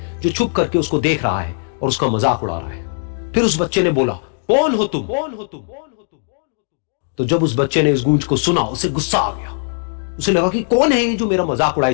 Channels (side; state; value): right; silent; digital silence